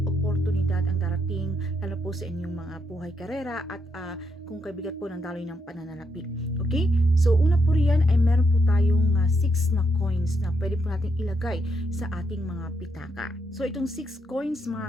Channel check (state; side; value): normal; both; correlation 0.78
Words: oportunidad ang darating, lalo po sa inyong mga buhay karera at kung kaibigat po ng daloy ng pananalapi. Okay? So una po riyan ay meron po tayong 6 na coins na pwede po natin ilagay sa ating mga pitaka. So itong 6 coins